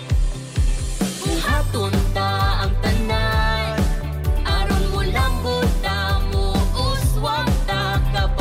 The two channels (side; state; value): both; identical; correlation 1.00